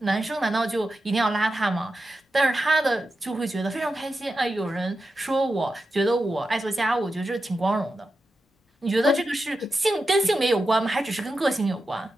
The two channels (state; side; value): normal; both; correlation 0.90